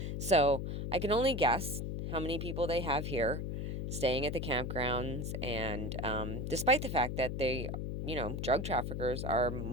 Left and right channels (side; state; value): left; noise; hum, 3 dB below the sound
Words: So I can only guess how many people they have here staying at the campgrounds. And despite the fact that they, drug traffickers are